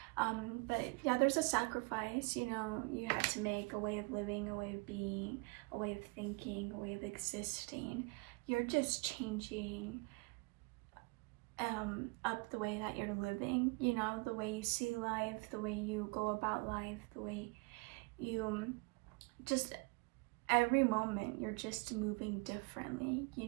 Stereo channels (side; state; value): left; quieter; 30.4 dB